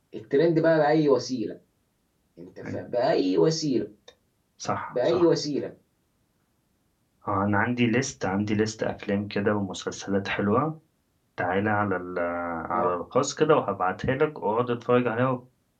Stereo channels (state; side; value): identical; both; correlation 1.00